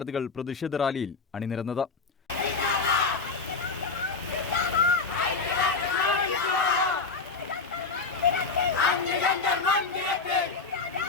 പ്രതിഷേധ റാലിയിൽ അണിനിരന്നത്.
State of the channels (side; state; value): right; quieter; 4.5 dB